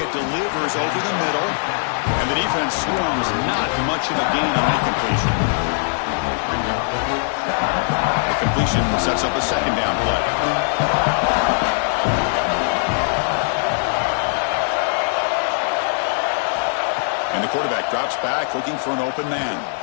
delivers over the middle. And the defense swarms. Not much of a gain on that completion. The completion sets up a second down play. And the quarterback drops back looking for an open man.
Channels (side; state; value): right; silent; 62 dB below the other